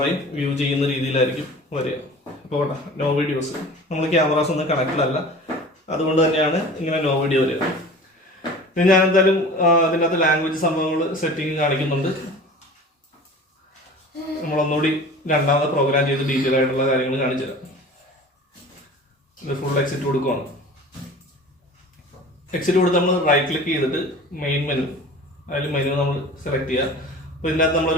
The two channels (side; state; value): both; normal; correlation 0.40